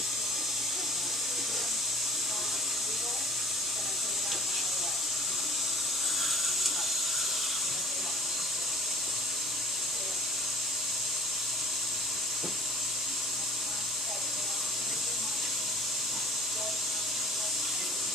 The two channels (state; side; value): normal; both; correlation 0.50